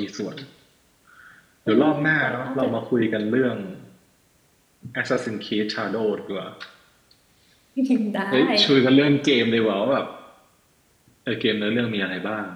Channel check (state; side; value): identical; both; correlation 1.00